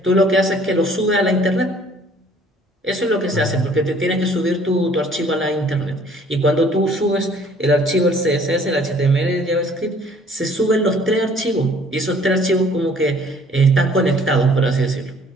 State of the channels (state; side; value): normal; both; correlation 0.57